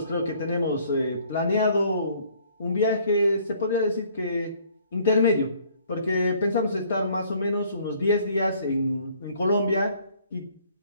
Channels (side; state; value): both; inverted; correlation -0.60